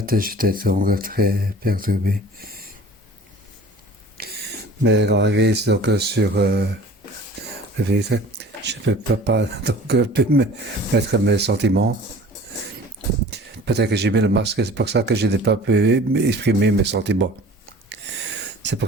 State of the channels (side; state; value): both; normal; correlation 0.45